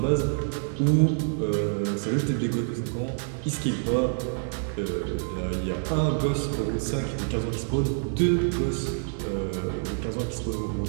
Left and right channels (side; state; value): left; silent; 60 dB below the other